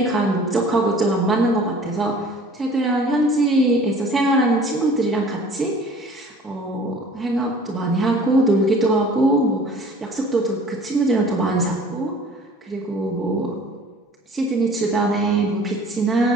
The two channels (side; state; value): both; normal; correlation 0.48